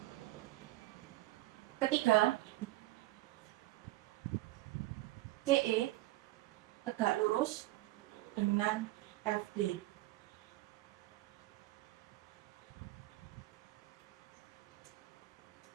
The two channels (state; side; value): quieter; left; 17.7 dB